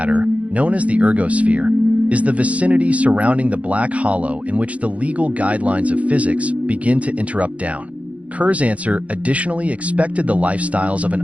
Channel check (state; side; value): late; left; 0.066 ms